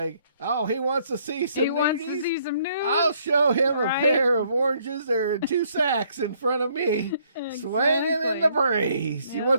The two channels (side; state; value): both; inverted; correlation -0.67